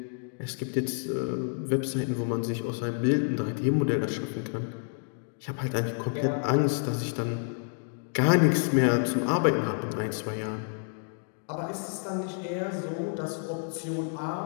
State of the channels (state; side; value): silent; right; 58 dB below the other